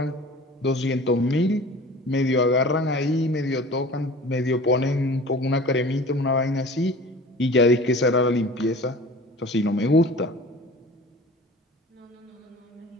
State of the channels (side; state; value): both; normal; correlation 0.42